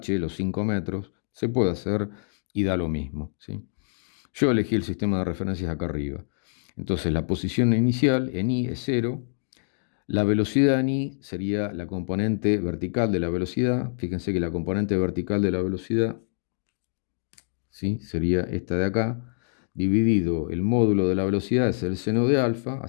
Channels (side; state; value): right; silent; digital silence